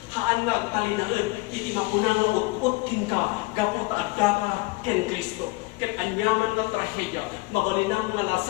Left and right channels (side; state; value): right; quieter; 23.7 dB